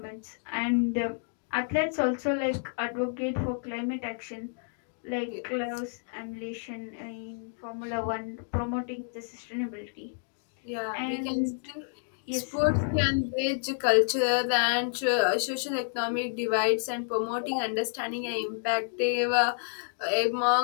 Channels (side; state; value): right; silent; digital silence